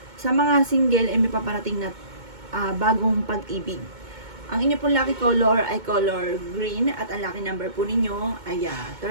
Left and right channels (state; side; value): late; left; 2.2 ms